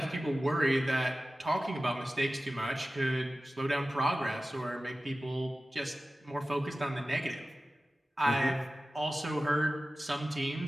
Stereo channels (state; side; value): normal; both; correlation 0.96